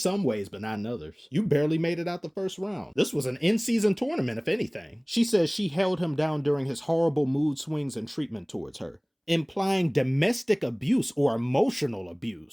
ways, but not in others. You barely made it out the first round. This was an in-season tournament, if anything. She says she held him down during his horrible mood swings and treatment towards her, implying domestic abuse or emotional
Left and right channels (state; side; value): identical; both; correlation 1.00